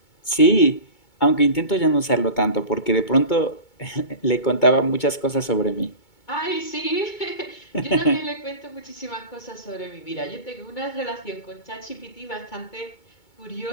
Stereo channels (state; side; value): late; right; 2.2 ms